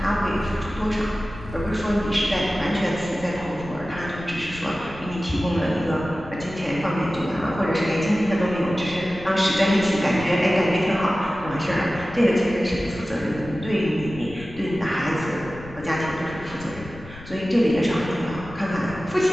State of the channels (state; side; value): noise; left; rumble, 17 dB below the sound